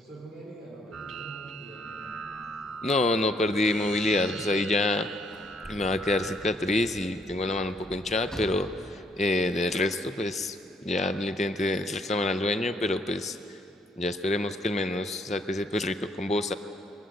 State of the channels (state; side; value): normal; both; correlation 0.68